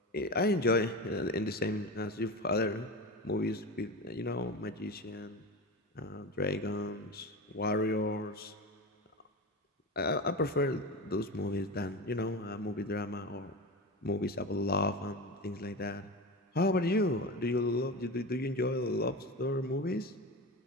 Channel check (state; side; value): normal; both; correlation 0.25